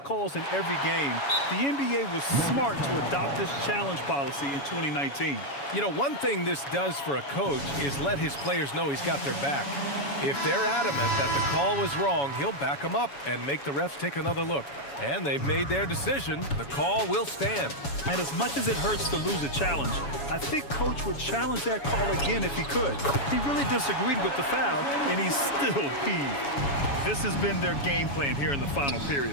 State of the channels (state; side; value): late; right; 7.1 ms